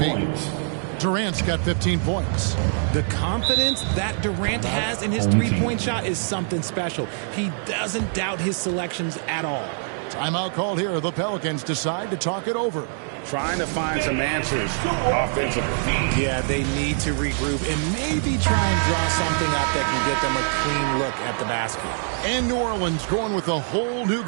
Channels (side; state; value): left; silent; 63 dB below the other